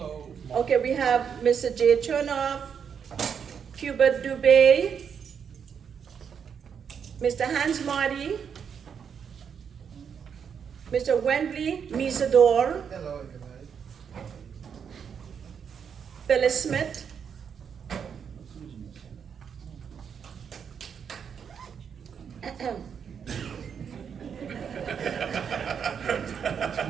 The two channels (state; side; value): quieter; left; 7.2 dB